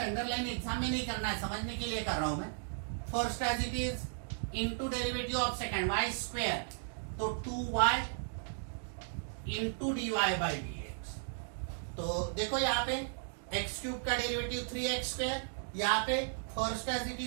अंडरलाइन एग्जाम में नहीं करना है, समझने के लिए कर रहा हूं मैं, first as it is into derivative of second y², तो 2y इंटू dy/dx। तो देखो यहाँ पे x³ का डेरिवेटिव 3x², यहाँ पे first as it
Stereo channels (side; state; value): left; silent; digital silence